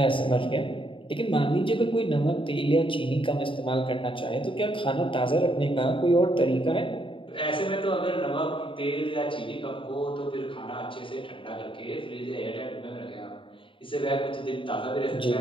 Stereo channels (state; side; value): late; right; 0.25 ms